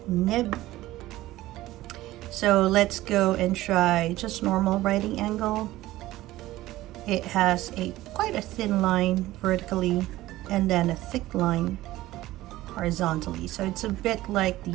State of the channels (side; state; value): left; quieter; 16.5 dB